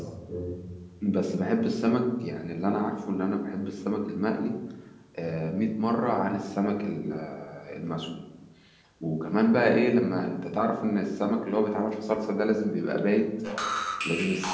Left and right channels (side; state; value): both; identical; correlation 1.00